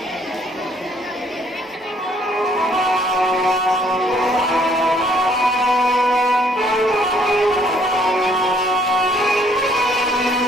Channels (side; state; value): both; normal; correlation 0.63